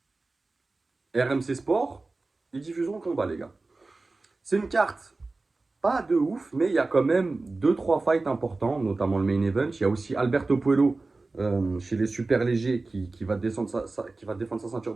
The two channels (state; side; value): quieter; left; 3.4 dB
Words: RMC Sport, ils diffuseront le combat, les gars. C'est une carte pas de ouf, mais il y a quand même 2-3 fights importants, notamment le main event. Il y a aussi Alberto Puello chez les super légers qui va descendre qui va défendre sa ceinture